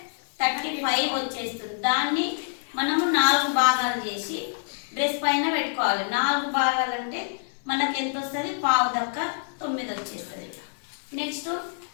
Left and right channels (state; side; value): silent; right; digital silence